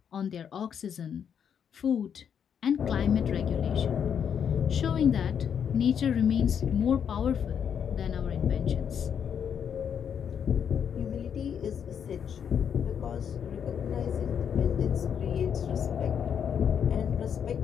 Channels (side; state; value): right; quieter; 7.9 dB